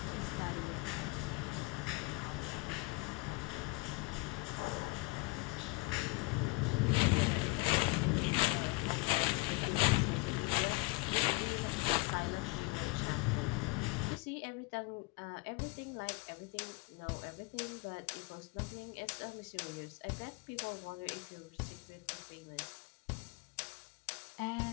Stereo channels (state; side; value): quieter; right; 25.9 dB